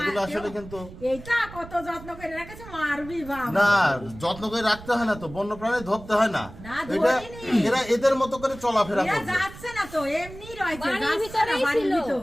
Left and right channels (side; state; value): right; noise; rumble, 16 dB below the sound